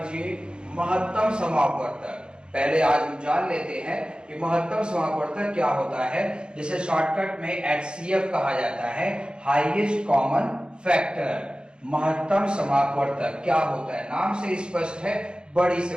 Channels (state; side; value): late; left; 0.051 ms